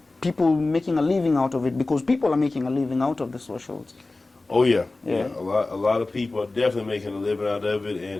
people making a living out of it, because people are making a living out of the socials. Oh yeah, Yeah. yeah. A lot of people are definitely making a living out of it,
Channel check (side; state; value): right; quieter; 3.2 dB